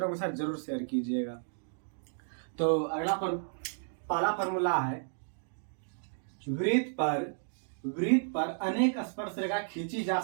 के साथ जरूर शेयर कीजिएगा। तो अगला पहला फार्मूला है, वृत्त पर अनेक स्पर्श रेखा खींची जा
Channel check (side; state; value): left; silent; digital silence